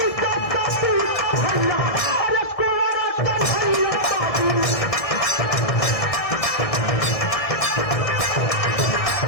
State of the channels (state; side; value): late; right; 1.6 ms